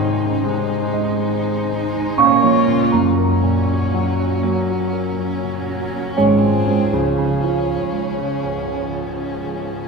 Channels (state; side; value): normal; both; correlation 0.41